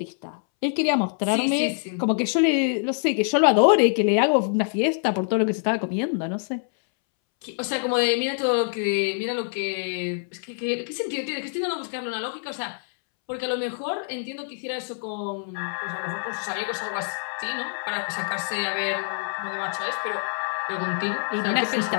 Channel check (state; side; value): silent; right; 62 dB below the other